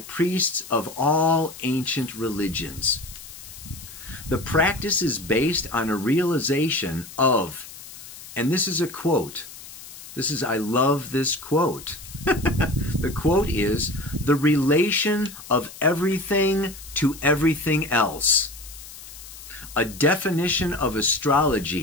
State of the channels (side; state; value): left; noise; hiss, 15 dB below the sound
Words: of all ancient religions. The practice is based on a realization of, and this is a quote. I love this quote. The quote is, the relation of everything to everything else. A definition of